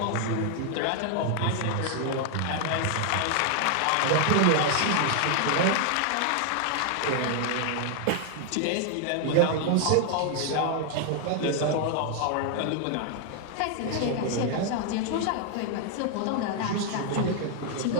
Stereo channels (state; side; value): different; both; correlation 0.00